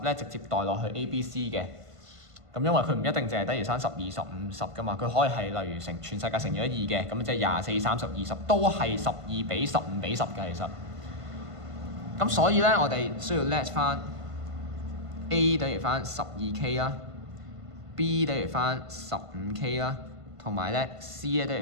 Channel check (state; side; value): late; left; 1.5 ms